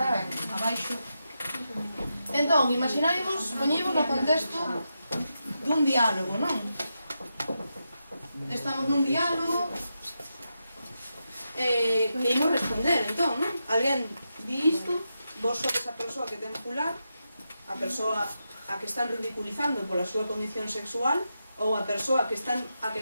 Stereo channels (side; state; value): both; inverted; correlation -0.87